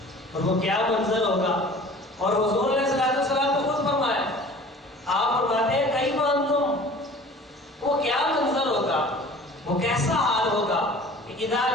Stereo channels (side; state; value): both; normal; correlation 0.45